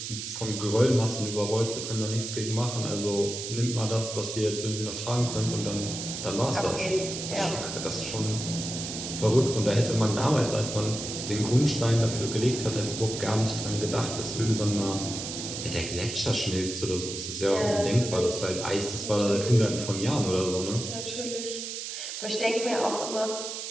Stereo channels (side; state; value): right; noise; hiss, 6 dB below the sound